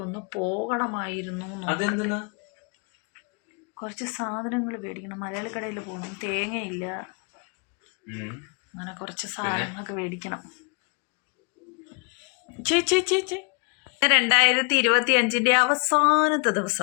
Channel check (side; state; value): right; quieter; 36.3 dB